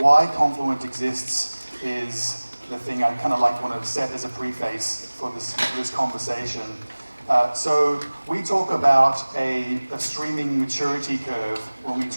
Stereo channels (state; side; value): inverted; both; correlation -1.00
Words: Confluent exists is the thing I kind of want to set as a preface for this conversation. So we talk about a streaming maturity curve when we